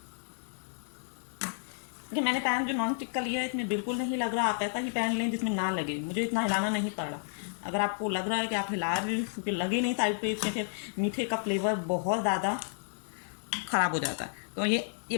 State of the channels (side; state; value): right; silent; 57 dB below the other